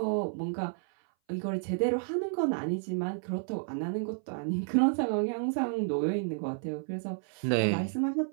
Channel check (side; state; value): left; silent; 57 dB below the other